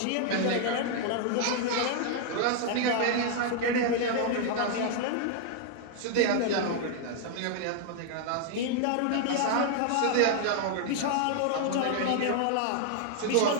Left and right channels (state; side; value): different; both; correlation 0.00